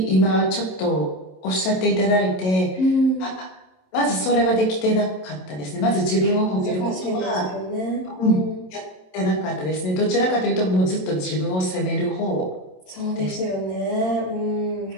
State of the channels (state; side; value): late; right; 27 ms